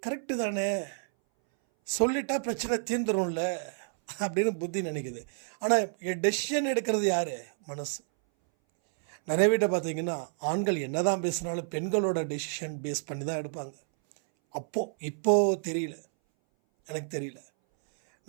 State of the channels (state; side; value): silent; left; 58 dB below the other